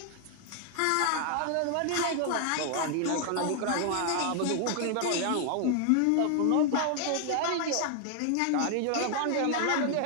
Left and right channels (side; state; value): both; different; correlation 0.00